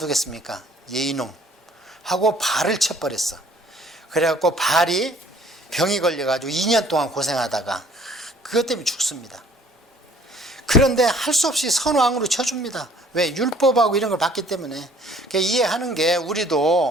이놈 하고 발을 쳐버렸어. 그래갖고 발이 병이 걸려가지고 2년 동안 고생하다가 그것 때문에 죽습니다. 그런데 할 수 없이 선왕으로 쳐줍니다. 왜? 율법하고 이런 걸 봤기 때문에. 그러니까 이해하는 게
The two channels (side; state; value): both; normal; correlation 0.56